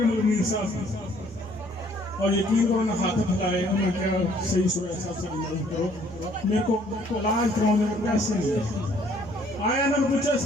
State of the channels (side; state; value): both; normal; correlation 0.61